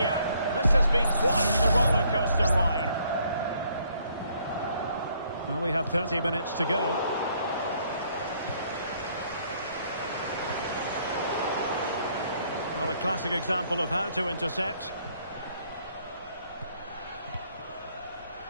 This has been quite the roller coaster ride. Well, we have 30 minutes to go. Well, a classic example of how to intercept.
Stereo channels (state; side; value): inverted; both; correlation -0.66